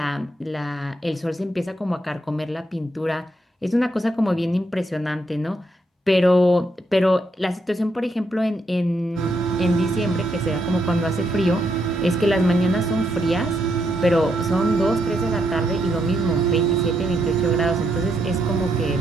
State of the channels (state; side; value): normal; both; correlation 0.78